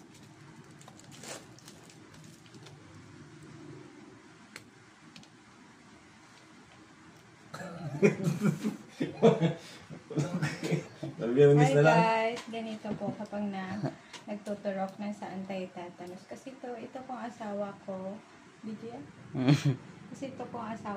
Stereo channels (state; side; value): identical; both; correlation 1.00